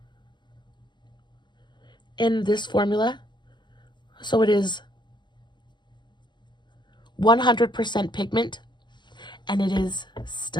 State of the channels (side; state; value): right; late; 0.22 ms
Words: in this formula. So it is 100% pigment, and it is